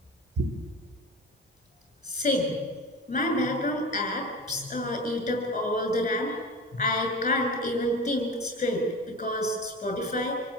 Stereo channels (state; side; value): normal; both; correlation 0.31